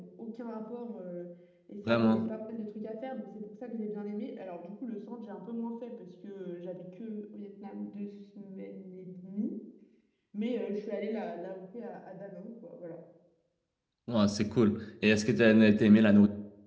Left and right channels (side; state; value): both; identical; correlation 1.00